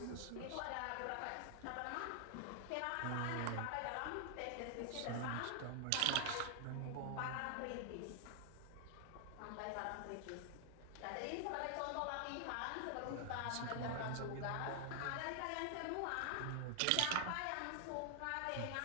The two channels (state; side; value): different; both; correlation 0.00